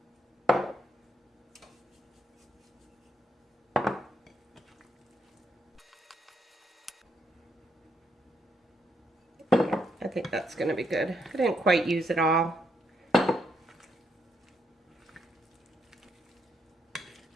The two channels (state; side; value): normal; both; correlation 0.77